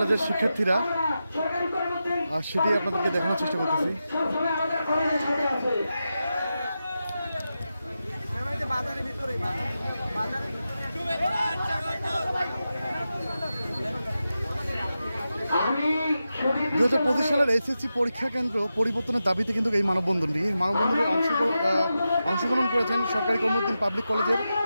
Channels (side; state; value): both; inverted; correlation -0.91